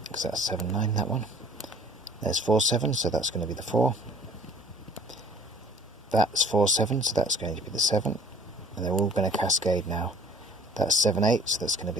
because that's 7, 9, that one. There's 4, 7, so that's going to be the 4. That's 4, 7, so that's going to be the 7. And they're all going to cascade now. That's 7, 8, so that's going to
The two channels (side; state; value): both; normal; correlation 0.52